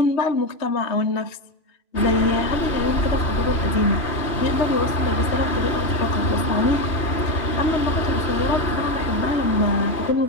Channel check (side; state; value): right; late; 3.2 ms